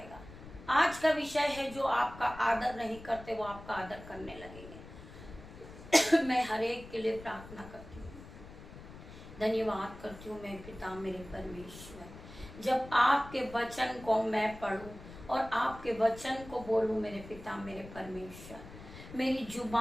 आज का विषय है जो आपका आदर नहीं करते वो आपका आदर करने लगेंगे। मैं हर एक के लिए प्रार्थना करती हूँ, धन्यवाद करती हूँ मैं पिता मेरे परमेश्वर। जब आपके वचन को मैं पढ़ूं और आपके वचन को बोलूं मेरे पिता मेरे परमेश्वर, मेरी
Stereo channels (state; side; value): noise; left; rumble, 16 dB below the sound